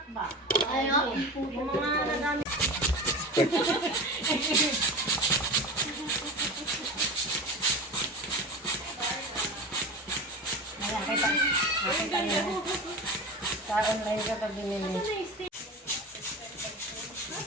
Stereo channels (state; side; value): normal; both; correlation 0.29